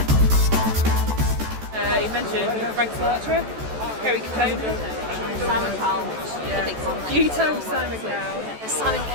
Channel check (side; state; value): left; late; 14 ms